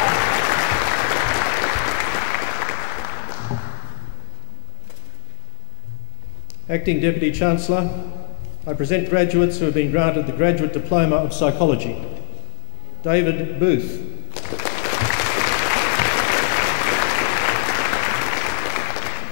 Acting Deputy Chancellor, I present graduates who have been granted the Graduate Diploma of Psychology. David Booth.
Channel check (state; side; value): silent; right; 61 dB below the other